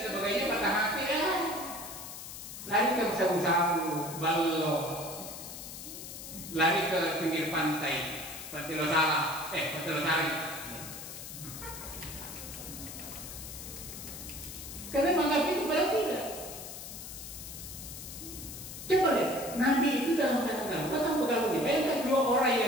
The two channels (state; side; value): noise; left; hiss, 10 dB below the sound